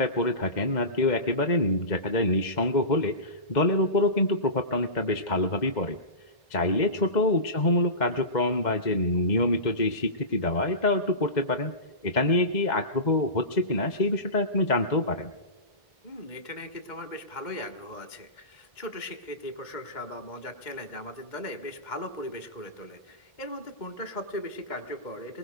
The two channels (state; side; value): late; right; 2.1 ms